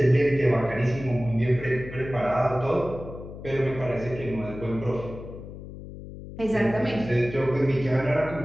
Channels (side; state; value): left; noise; hum, 13 dB below the sound